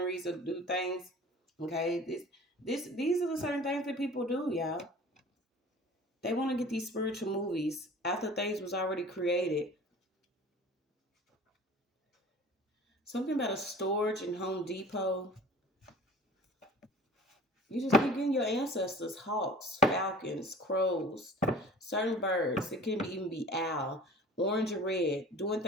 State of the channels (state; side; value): normal; both; correlation 0.44